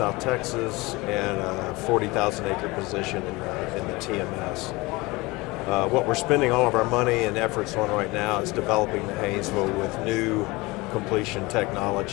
Texas, and a 40,000 acre position in the TMS. What we're spending all of our money and efforts on right now is developing the Haynesville with new completion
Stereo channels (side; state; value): right; quieter; 22.9 dB